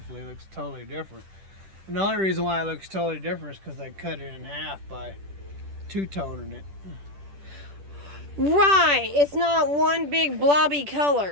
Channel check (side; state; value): left; late; 10 ms